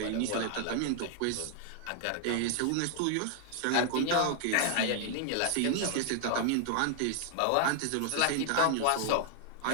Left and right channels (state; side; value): different; both; correlation 0.00